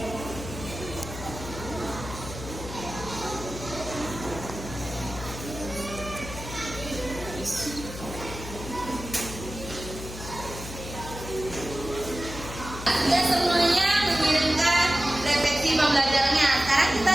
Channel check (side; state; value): left; noise; hum, 11 dB below the sound